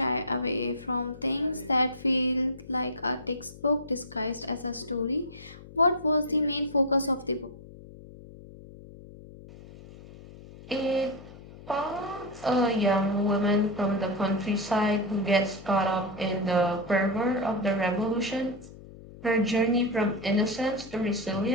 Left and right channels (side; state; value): left; noise; hum, 18 dB below the sound